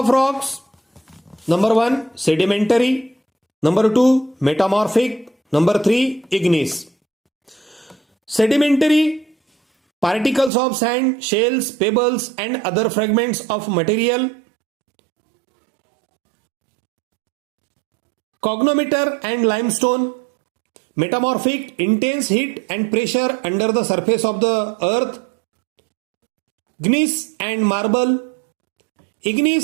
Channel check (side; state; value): left; drops out; at 10.5 s